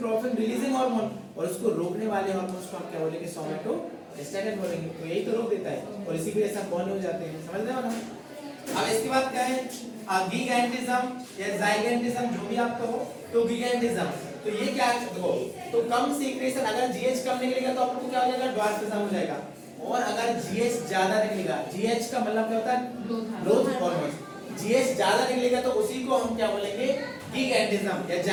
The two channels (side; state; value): both; identical; correlation 1.00